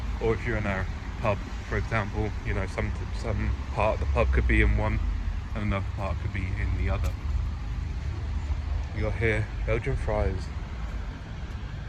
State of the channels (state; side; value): identical; both; correlation 1.00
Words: Or if you're in a pub, for example, you know, some part of the pub could be in one and another part could be in the other. You got here Belgian fries.